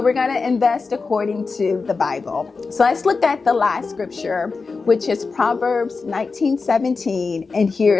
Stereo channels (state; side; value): quieter; right; 4.4 dB